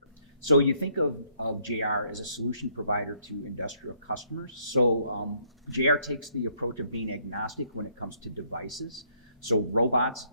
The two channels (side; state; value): both; inverted; correlation -0.69